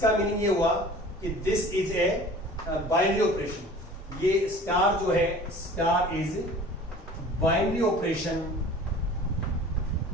मीनिंग ये हुआ कि this is a binary operation, ये स्टार जो है star is binary operation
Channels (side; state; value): both; normal; correlation 0.44